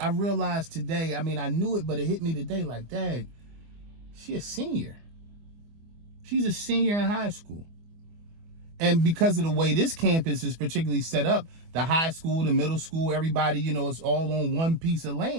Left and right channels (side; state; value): left; late; 24 ms